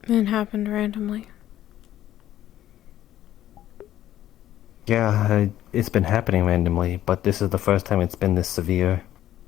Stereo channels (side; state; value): right; quieter; 12.8 dB